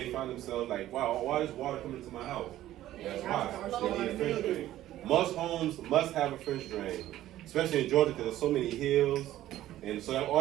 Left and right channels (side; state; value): left; quieter; 13.8 dB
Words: find themselves like, wow, why is water coming into my house? That's why. They need a French drain. Most homes must have a French drain, especially in Georgia because there's so many hills. And so